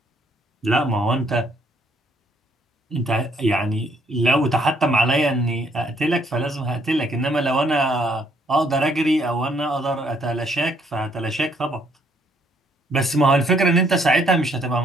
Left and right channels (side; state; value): both; normal; correlation 0.68